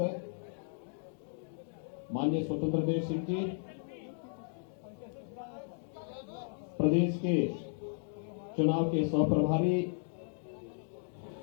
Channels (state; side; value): silent; right; digital silence